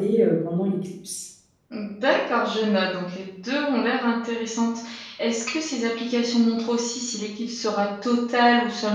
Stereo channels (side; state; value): both; identical; correlation 1.00